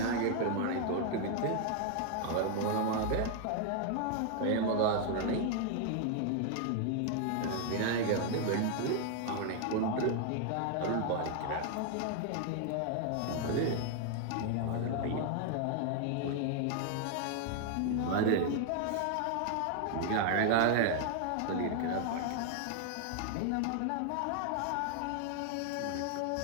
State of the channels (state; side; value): different; both; correlation 0.00